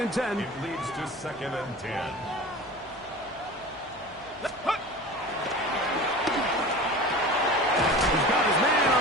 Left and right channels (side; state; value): left; noise; hum, 26 dB below the sound